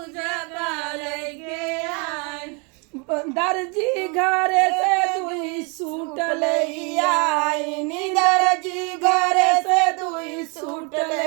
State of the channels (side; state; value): left; quieter; 33.4 dB